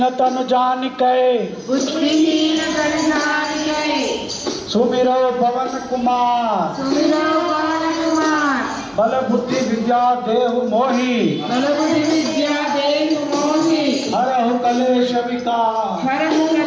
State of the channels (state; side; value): identical; both; correlation 1.00